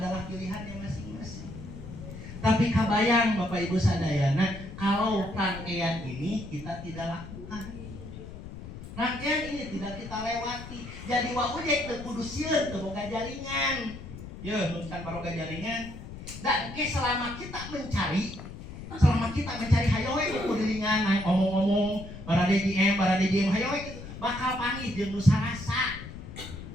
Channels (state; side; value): noise; left; rumble, 12 dB below the sound